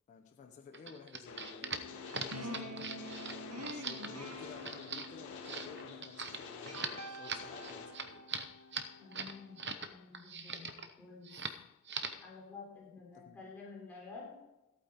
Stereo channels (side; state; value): both; normal; correlation 0.00